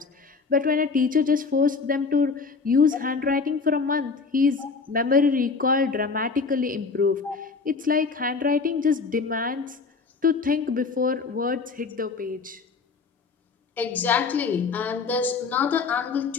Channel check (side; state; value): right; quieter; 4.7 dB